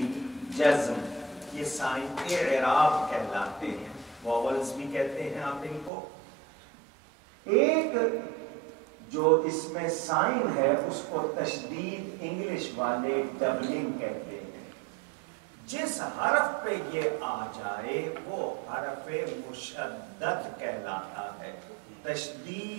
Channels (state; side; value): drops out; left; at 5.9 s